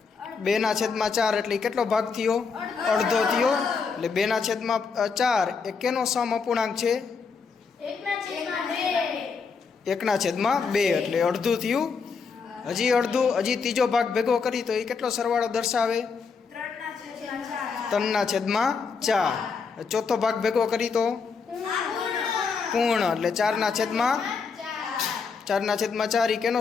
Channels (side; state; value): right; quieter; 5.3 dB